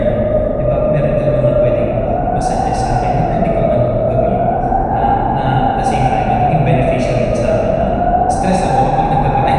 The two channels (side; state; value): both; identical; correlation 1.00